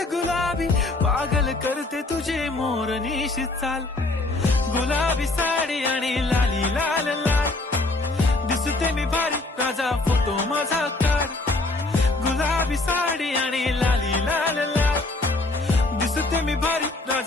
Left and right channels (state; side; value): quieter; right; 3.0 dB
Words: गुलाबी, पागल करते तुझे मोरनीशी चाल. गुलाबी साडी आणि लाली लाल लाल, दिसते मी भारी राजा फोटो माझा काढ. गुलाबी साडी आणि लाली लाल लाल, दिसते मी भारी